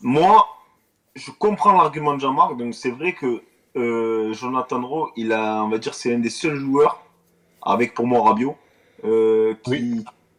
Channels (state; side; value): identical; both; correlation 1.00